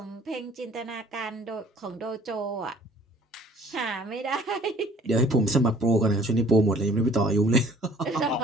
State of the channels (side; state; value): both; normal; correlation 0.54